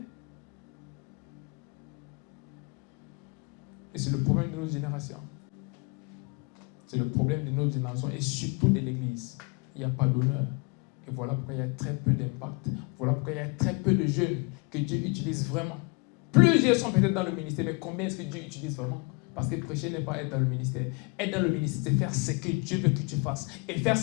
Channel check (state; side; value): quieter; right; 31.5 dB